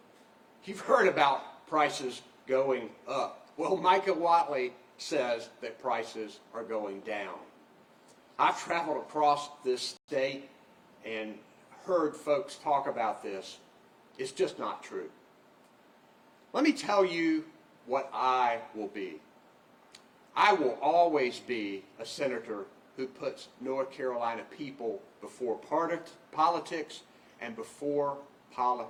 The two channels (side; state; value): both; identical; correlation 1.00